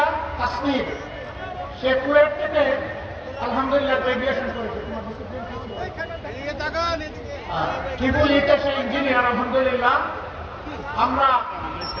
কাশ্মীর, সে কুয়েট থেকে আলহামদুলিল্লাহ গ্রাজুয়েশন করেছে। ট্রিপল ইতে সে ইঞ্জিনিয়ার আলহামদুলিল্লাহ। আমরা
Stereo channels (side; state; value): both; identical; correlation 1.00